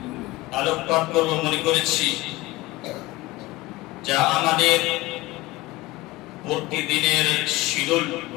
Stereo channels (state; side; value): quieter; right; 19.6 dB